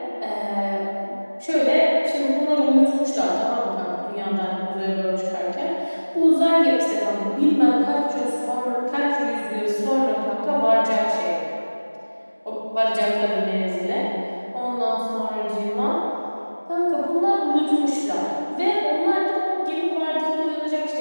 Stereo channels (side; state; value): both; inverted; correlation -1.00